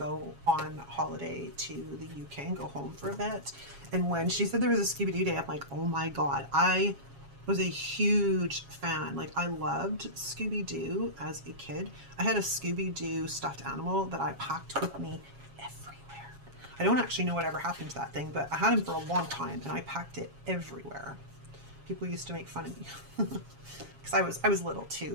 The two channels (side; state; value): left; late; 7.3 ms